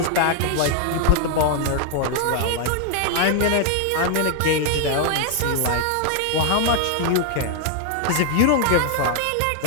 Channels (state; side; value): different; both; correlation 0.00